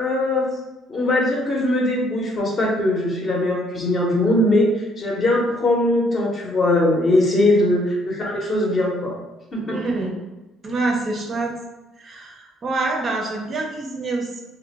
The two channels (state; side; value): normal; both; correlation 0.67